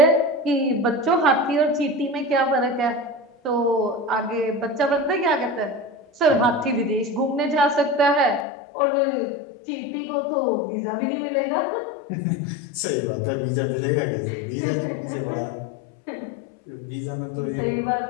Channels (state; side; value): drops out; right; at 8.5 s